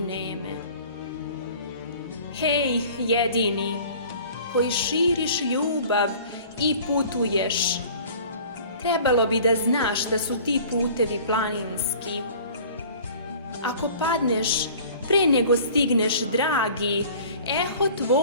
neme. Hej, jedini, koji širiš ljubav i putuješ, trebalo bi da znaš da su ti putevi planinski. Ako padneš pre nego stigneš, dragi, eho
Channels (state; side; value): inverted; both; correlation -0.46